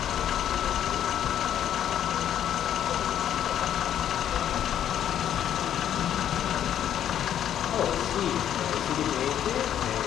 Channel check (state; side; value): quieter; right; 10.3 dB